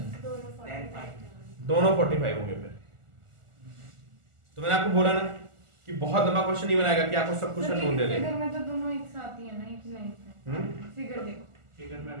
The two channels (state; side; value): late; left; 1.4 ms